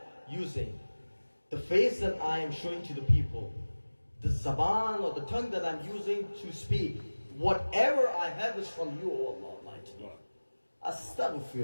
using, the face that I am showing to the people, the zaban or the tongue that I'm using to speak, whatever I have is from you, O Allah Almighty.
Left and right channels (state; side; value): inverted; both; correlation -1.00